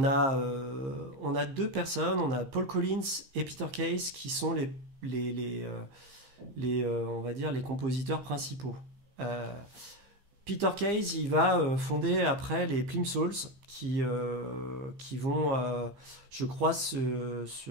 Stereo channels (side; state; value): left; late; 15 ms